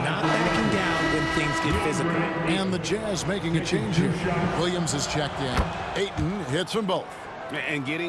Not backing down when things get physical. And the Jazz making a change here. Williams is checked in. Ayton hits them both. And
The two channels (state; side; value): identical; both; correlation 1.00